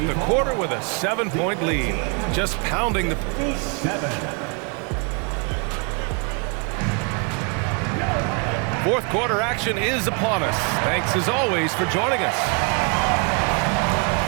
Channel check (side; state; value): left; quieter; 35.9 dB